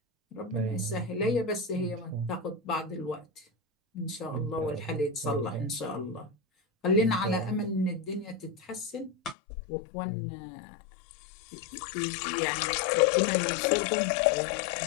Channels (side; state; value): right; drops out; at 9.3 s